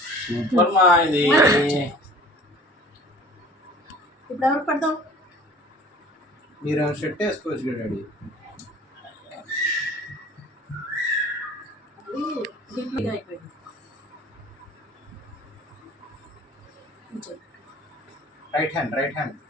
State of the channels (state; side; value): normal; both; correlation 0.47